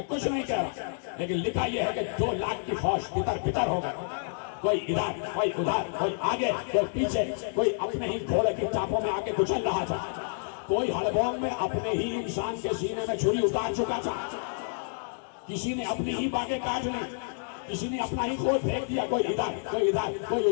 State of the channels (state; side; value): silent; right; digital silence